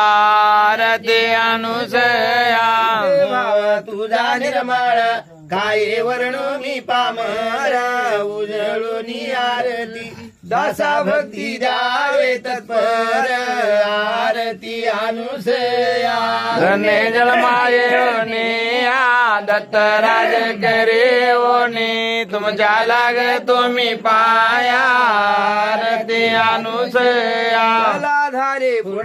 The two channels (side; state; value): both; identical; correlation 1.00